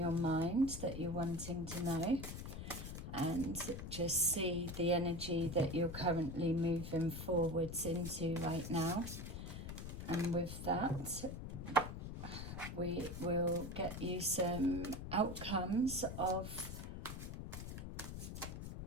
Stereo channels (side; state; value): left; noise; rumble, 7 dB below the sound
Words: mind that you're wanting to know and just see the energy that you're currently moving forwards into right now. And with that, we will get you some outcomes of